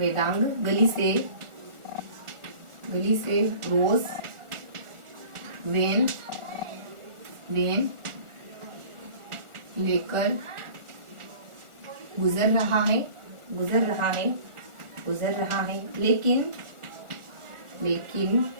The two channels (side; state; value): left; late; 1.4 ms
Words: गली से रोज वेन लेकर गुजर रहा है, लेकिन